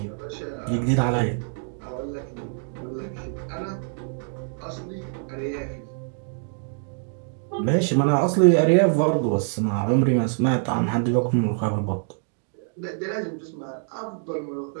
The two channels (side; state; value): left; silent; 62 dB below the other